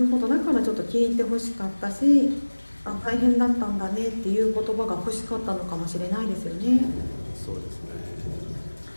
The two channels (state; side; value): inverted; both; correlation -1.00